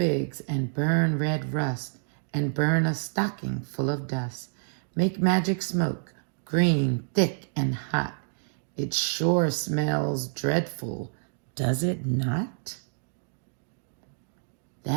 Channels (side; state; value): left; silent; digital silence